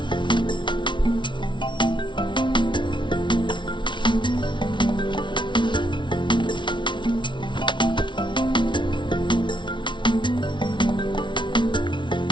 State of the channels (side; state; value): right; late; 0.24 ms